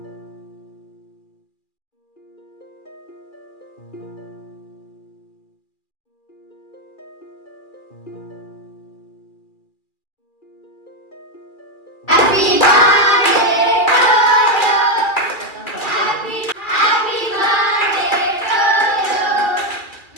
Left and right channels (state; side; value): late; right; 2.4 ms